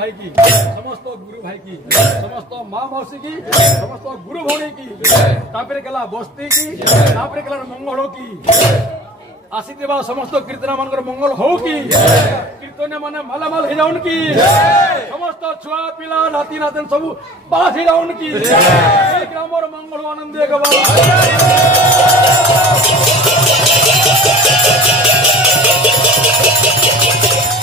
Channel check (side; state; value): both; normal; correlation 0.40